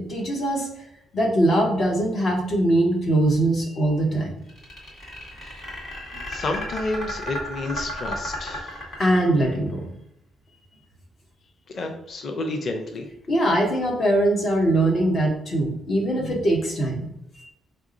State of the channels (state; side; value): normal; both; correlation 0.79